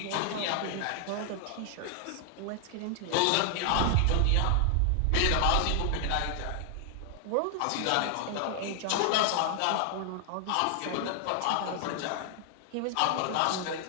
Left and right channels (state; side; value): different; both; correlation 0.00